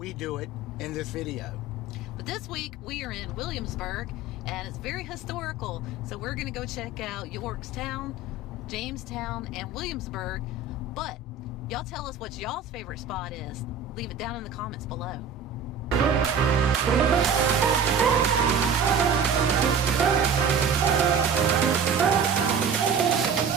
do it in this video. But this week we are in Williamsburg and it's very historical. So we're going to go check out Yorktown, Jamestown, and Williamsburg. But y'all tell us what y'all's favorite spot is. Leave it down in the comments below.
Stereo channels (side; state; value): left; quieter; 4.4 dB